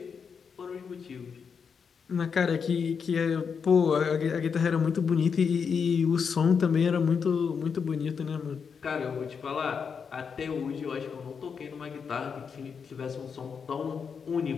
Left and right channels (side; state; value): right; quieter; 6.2 dB